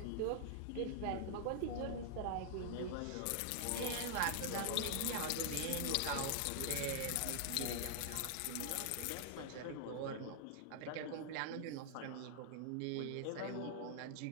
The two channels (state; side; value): different; both; correlation -0.01